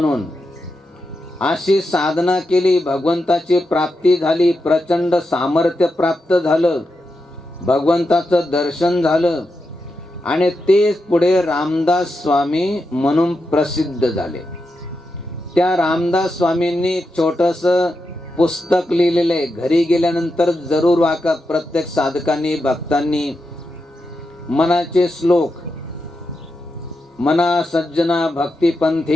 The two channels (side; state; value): both; normal; correlation 0.87